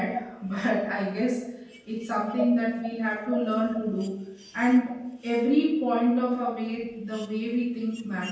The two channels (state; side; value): identical; both; correlation 1.00